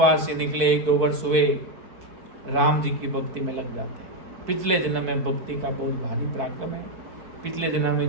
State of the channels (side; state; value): left; late; 4.6 ms